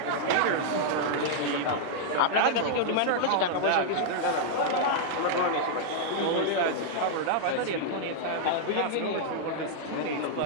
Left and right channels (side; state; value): both; different; correlation -0.01